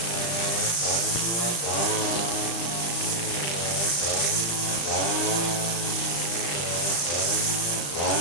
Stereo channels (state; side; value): late; right; 35 ms